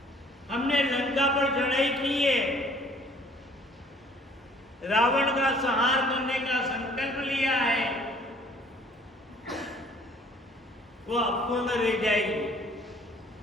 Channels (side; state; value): both; normal; correlation 0.56